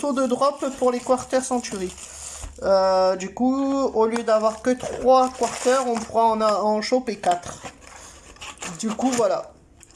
de drop pour les Quarter Century. Du coup, au lieu d'avoir que 3 quarters, on pourra en choper 4. Du coup, voilà.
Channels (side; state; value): both; identical; correlation 1.00